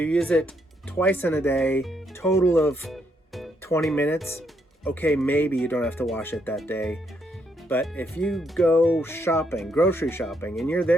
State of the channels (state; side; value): normal; both; correlation 0.75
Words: use it twice in a day, total of 20 minutes, okay, maybe you don't have to wash it that day. But if you go shopping, grocery shopping, and you're